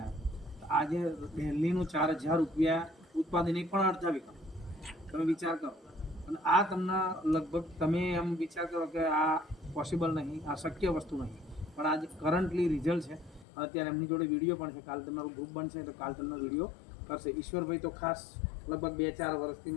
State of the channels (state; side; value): drops out; right; at 13.5 s